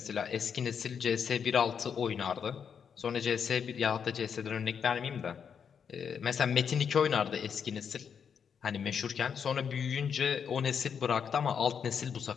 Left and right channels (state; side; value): quieter; right; 7.1 dB